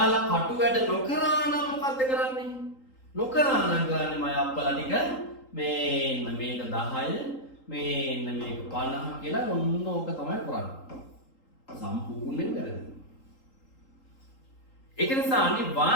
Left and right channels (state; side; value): late; right; 3.8 ms